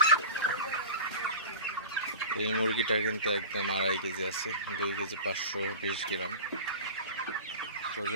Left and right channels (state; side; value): inverted; both; correlation -0.35